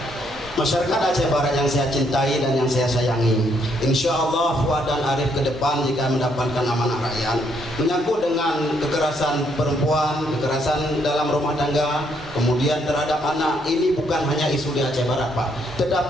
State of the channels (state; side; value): normal; both; correlation 0.72